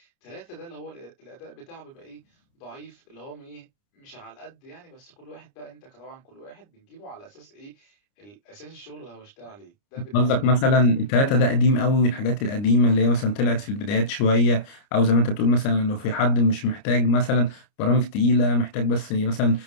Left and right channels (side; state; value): right; late; 29 ms